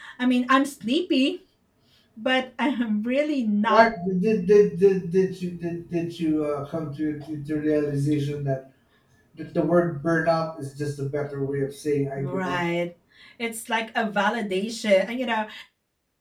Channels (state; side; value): identical; both; correlation 1.00